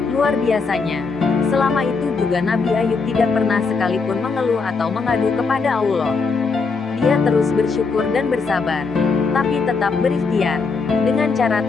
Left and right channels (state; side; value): quieter; right; 4.6 dB